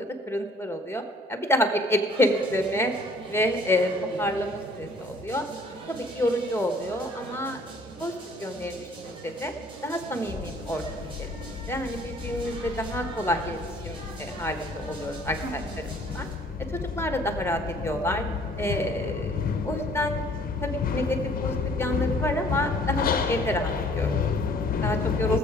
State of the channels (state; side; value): normal; both; correlation 0.57